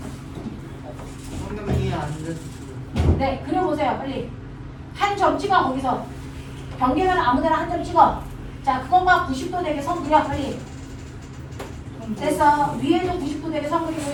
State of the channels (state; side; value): identical; both; correlation 1.00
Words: 방금 이해 안 됐어. 네, 그려보세요. 빨리. 한 점 찍어 거기서. 경계면 아무데나 한 점 찍어. 자 그것만 90도 되게 선 그려 빨리. 됐어. 위에도 90도 되게 선